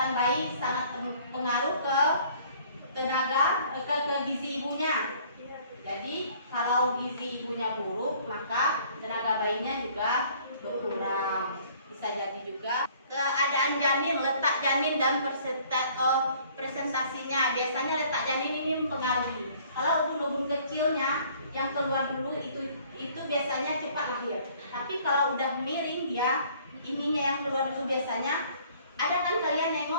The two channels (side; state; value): both; inverted; correlation -0.56